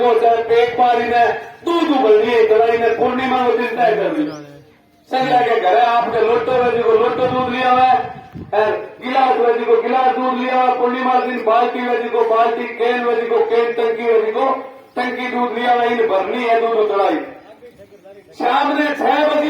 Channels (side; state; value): both; identical; correlation 1.00